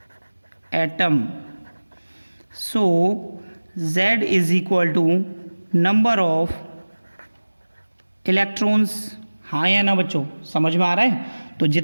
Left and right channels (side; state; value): both; inverted; correlation -1.00